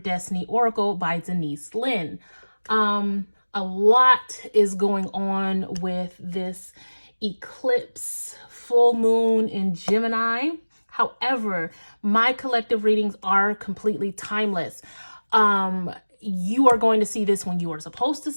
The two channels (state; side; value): inverted; both; correlation -1.00